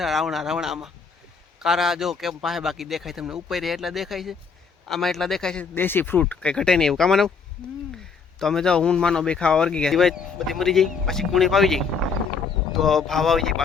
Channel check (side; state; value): right; quieter; 5.4 dB